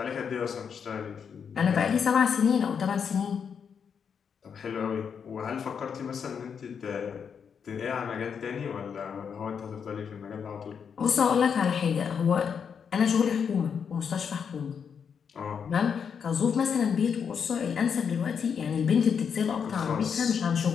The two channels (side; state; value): right; quieter; 6.9 dB